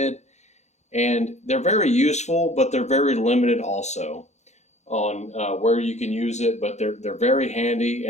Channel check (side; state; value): right; late; 0.33 ms